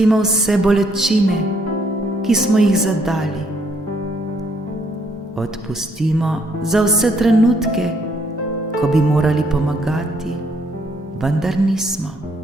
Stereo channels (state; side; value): normal; both; correlation 0.69